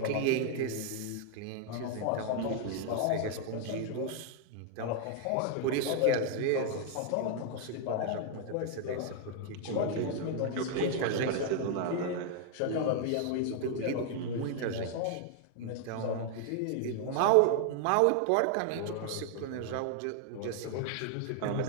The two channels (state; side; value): different; both; correlation 0.00